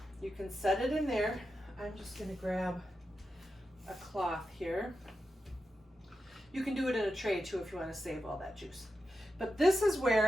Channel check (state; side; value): normal; both; correlation 0.89